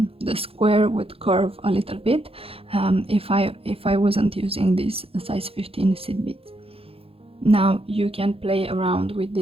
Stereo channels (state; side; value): late; left; 0.27 ms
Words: square would curve a little bit if I wasn't using this size 15 seed beads. Now you can play around with